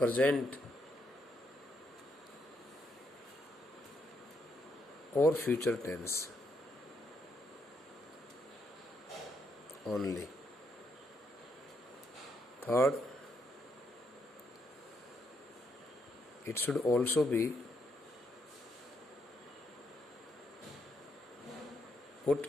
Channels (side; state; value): both; normal; correlation 0.77